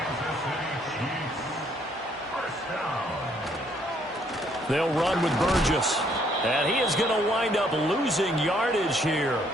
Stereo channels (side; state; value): both; normal; correlation 0.67